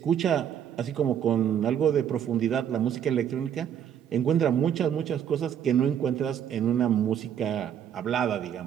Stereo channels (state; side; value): quieter; left; 9.1 dB